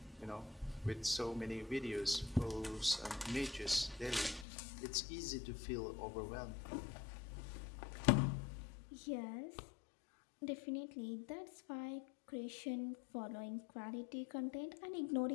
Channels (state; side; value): drops out; right; at 4.5 s